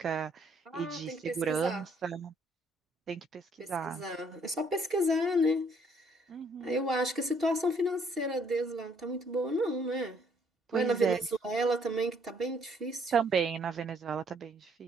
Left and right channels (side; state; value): both; normal; correlation 0.66